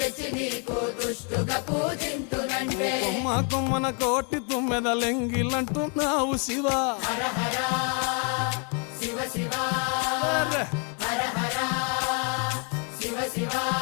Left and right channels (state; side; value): quieter; right; 37.1 dB